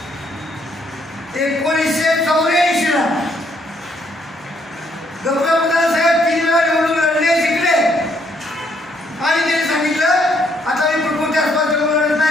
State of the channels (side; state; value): both; normal; correlation 0.70